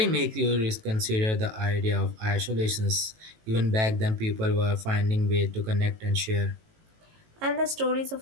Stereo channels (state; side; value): late; left; 18 ms